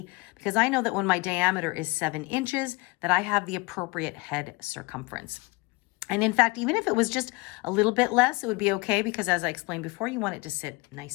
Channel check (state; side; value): quieter; right; 25.7 dB